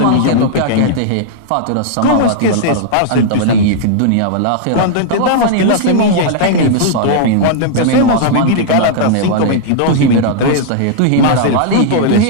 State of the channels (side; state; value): both; different; correlation -0.01